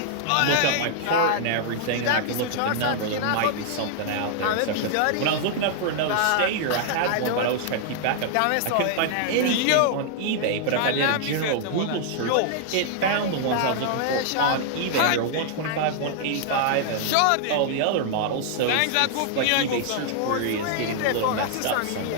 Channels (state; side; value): different; both; correlation -0.01